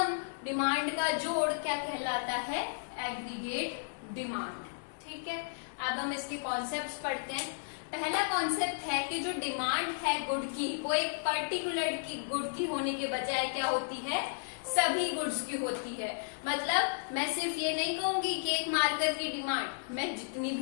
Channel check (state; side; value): silent; right; digital silence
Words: डिमांड का जोड़ क्या कहलाता है, एग्रीगेट डिमांड। ठीक है, अब हम इसके कॉन्सेप्ट्स पढ़ते हैं। पहला कॉन्सेप्ट है कि जो डिमांड है गुड की, वो एक पर्टिकुलर की गुड की होने के बजाय क्या होती है, सभी गुड्स की होती है। मतलब मैं सिर्फ ये नहीं कहूंगी कि एक मार्कर की डिमांड, मैं जितनी